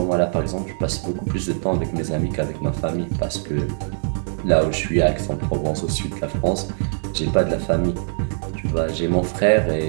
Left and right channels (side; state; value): left; silent; digital silence